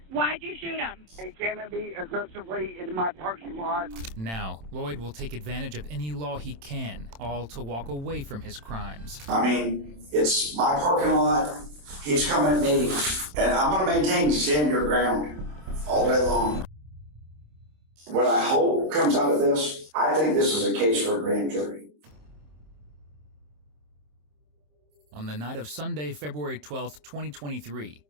Why'd you shoot him? He came at me aggressively in my parking lot. Now, Lloyd will take advantage of any law he can, all to walk away from his crimes. I mean, it's my parking lot. He's coming at me, and I'm going to maintain stand your ground all day long. What I hope comes out of this, I think this is a case for a grand jury. On the night of Sunday, February 12th, 2023,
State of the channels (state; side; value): late; left; 27 ms